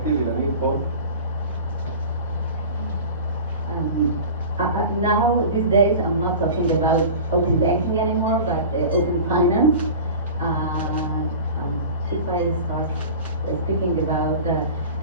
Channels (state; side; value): inverted; both; correlation -0.36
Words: Inanit, Paul? Now, these days, I'm not talking about open banking anymore, but open finance. If I start speaking about